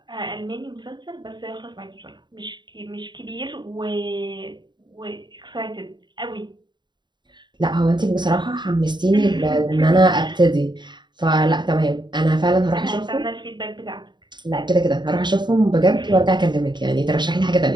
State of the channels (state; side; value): late; left; 0.22 ms